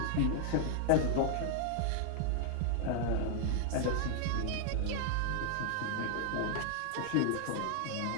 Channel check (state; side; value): different; both; correlation 0.00